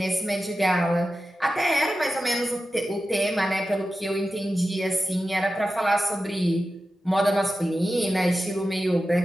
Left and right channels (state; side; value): normal; both; correlation 0.93